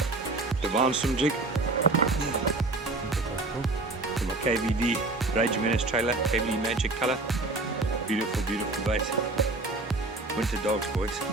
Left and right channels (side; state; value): left; quieter; 3.2 dB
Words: Divine Swim Jig. From a KVD Rage Menace trailer, KVD Magic color. Beautiful, beautiful bait. Winter dogs, boys.